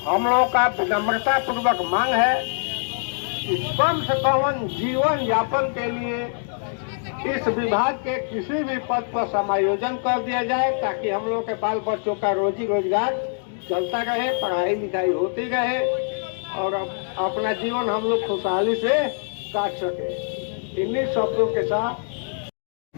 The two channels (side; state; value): right; silent; digital silence